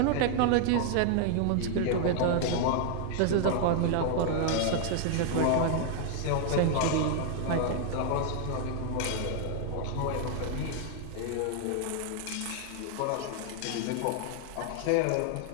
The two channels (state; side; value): different; both; correlation 0.00